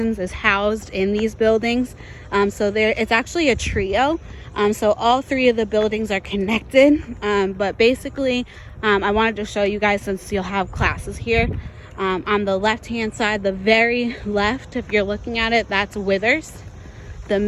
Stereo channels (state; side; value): identical; both; correlation 1.00